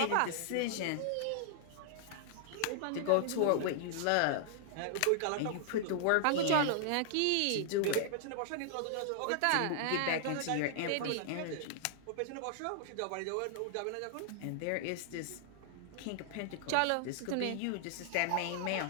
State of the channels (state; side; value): different; both; correlation -0.01